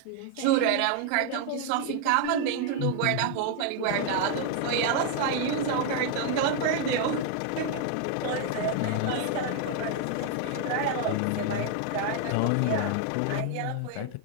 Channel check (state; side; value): different; both; correlation 0.00